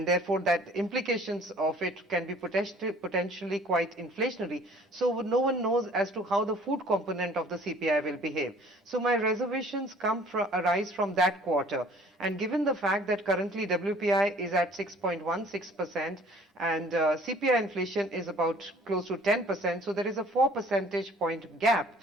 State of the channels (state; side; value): normal; both; correlation 0.53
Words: therefore that implications of it can be potentially quite inflationary. So no one knows as to how the food component of the CPI will behave. So my reservations arise from that quarter. And given the fact that currently WPI is at 6.16% and CPI inflation is about close to 10%, so there is a 4 percentage point gap.